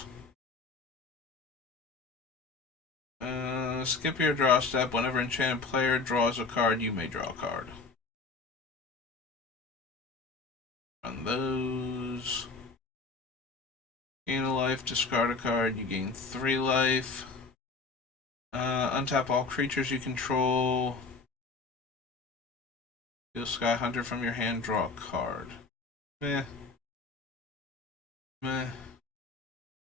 Skip your draw step. Whenever enchanted player draws a card, you may draw a card. Run those. Gain a life, discard a card, you gain 3 life. Untap all creatures you control. Deal Sky Hunter from your hand, draw a card. Meh.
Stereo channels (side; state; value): right; quieter; 4.2 dB